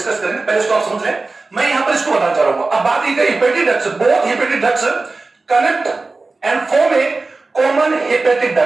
करेंगे, पहले इसको आप समझ लें. मैं यहाँ पर इसको बताना चाह रहा हूँ. अब बात ये hepatic ducts, both hepatic ducts connect and form a common hepatic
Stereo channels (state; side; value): quieter; left; 3.6 dB